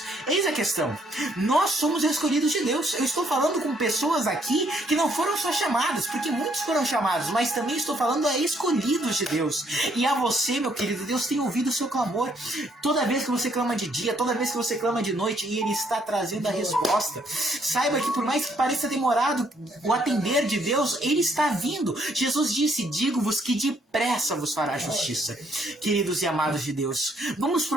Eis a questão: nós somos escolhidos de Deus. Eu estou falando com pessoas aqui que não foram só chamadas, porque muitos foram chamados, mas também estou falando a escolhidos de Deus. E a você, meu querido, Deus tem ouvido o seu clamor. Toda vez que você clama de dia, toda vez que você clama de noite, e Ele está trazendo a resposta. Saiba que por mais que pareça demorado o atender de Deus, Ele está vindo. Jesus disse: digo-vos que depressa vos fará justiça. Queridos e amados de Deus, vamos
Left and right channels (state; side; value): normal; both; correlation 0.69